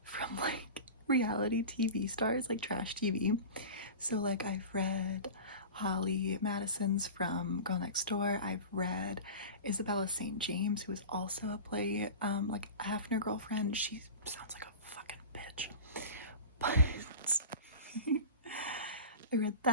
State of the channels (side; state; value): both; inverted; correlation -0.32